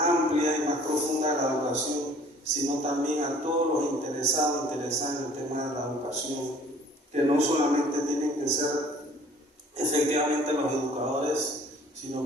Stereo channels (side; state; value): both; normal; correlation 0.53